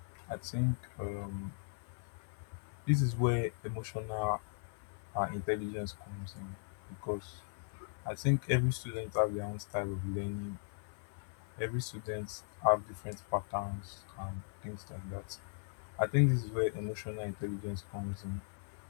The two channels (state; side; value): silent; right; digital silence